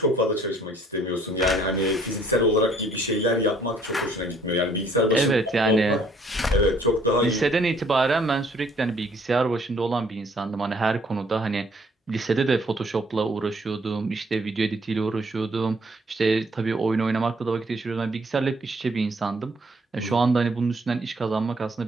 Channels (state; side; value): normal; both; correlation 0.63